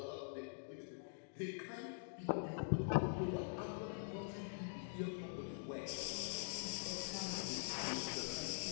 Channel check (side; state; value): right; silent; digital silence